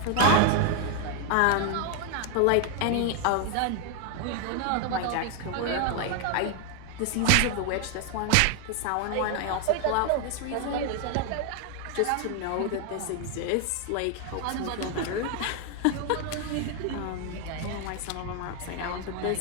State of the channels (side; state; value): both; different; correlation 0.01